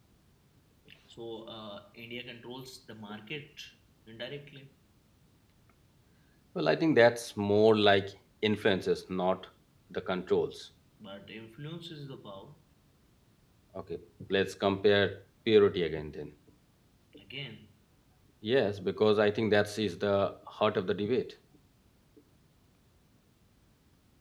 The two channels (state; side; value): identical; both; correlation 1.00